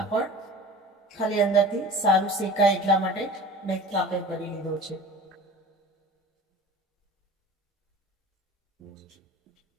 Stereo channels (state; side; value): normal; both; correlation 0.39